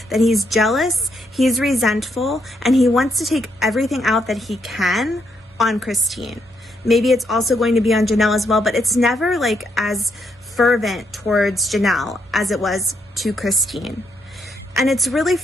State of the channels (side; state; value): both; normal; correlation 0.77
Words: that he's jealous, he's resentful, and he wants to take everything out that he can on Christine. Maybe it's also going to be on Janelle as well, but it's never like as fervent towards Janelle as it was to Christine. And it's really